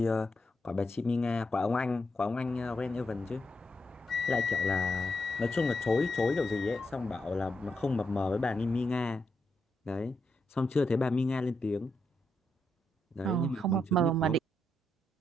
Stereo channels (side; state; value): both; normal; correlation 0.82